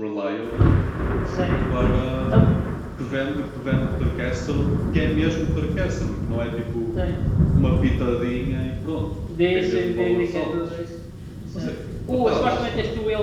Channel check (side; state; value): both; identical; correlation 1.00